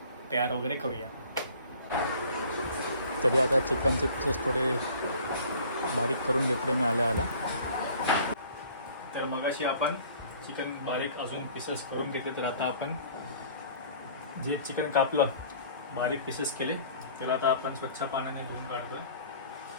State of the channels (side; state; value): both; inverted; correlation -0.50